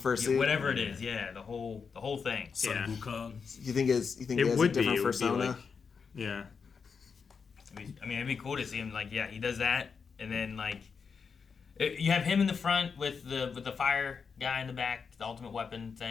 Yeah, suit. whatever it is, yeah, the whole thing. Sun Yeah. Wukong. You think It he has would a be. different It would be persona? like, yeah. I mean, it'd be cool to see him like, yeah, he does that, and then like, you have him in the front with the fire guy in the back, the ultimate weapon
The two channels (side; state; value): right; quieter; 5.7 dB